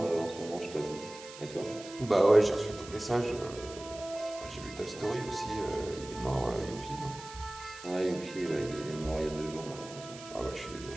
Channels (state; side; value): noise; right; hiss, 15 dB below the sound